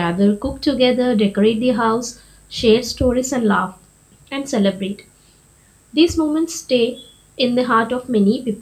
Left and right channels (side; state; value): both; identical; correlation 1.00